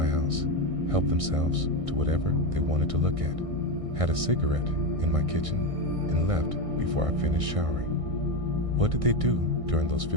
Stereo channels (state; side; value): late; left; 1.6 ms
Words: house, helped themselves to whatever they wanted to look at, had a cigarette in my kitchen, and left before I finished showering. What did they do during those